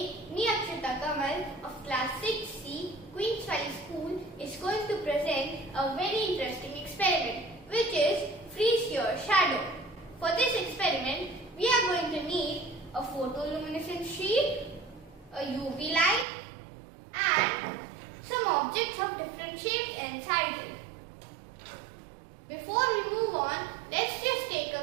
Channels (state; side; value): drops out; left; at 16.2 s